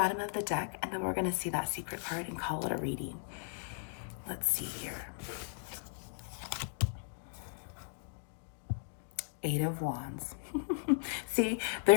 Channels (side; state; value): right; silent; digital silence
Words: of the deck, and then we're going to see that secret card and call it a reading. Let's see here. 8 of Wands. See,